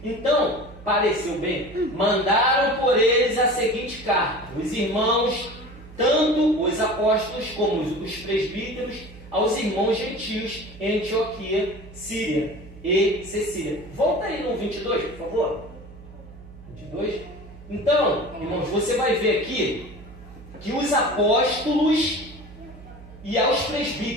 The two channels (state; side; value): noise; right; hum, 18 dB below the sound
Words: Então, pareceu bem, mandaram por eles a seguinte carta: os irmãos, tanto os apóstolos como os presbíteros, aos irmãos gentios em Antioquia, Síria e Cecília. Volta aí no 22, por favor. 22. Então, irmãos, você vai ver aqui que os apóstolos e aos